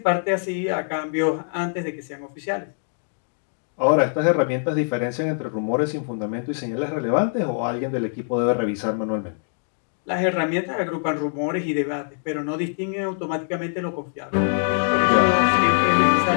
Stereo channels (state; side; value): silent; right; digital silence